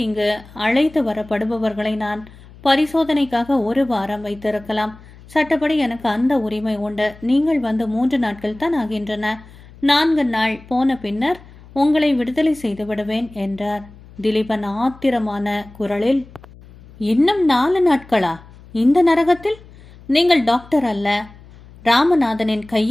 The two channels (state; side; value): noise; left; hum, 22 dB below the sound